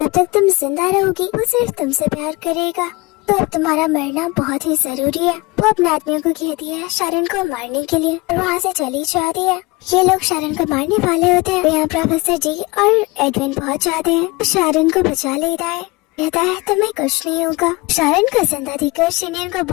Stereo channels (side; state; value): right; quieter; 24.0 dB